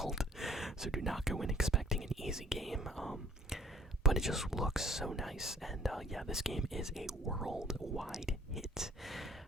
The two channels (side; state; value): both; normal; correlation 0.54